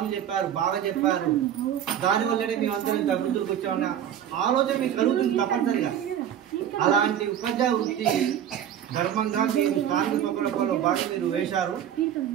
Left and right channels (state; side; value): quieter; left; 10.0 dB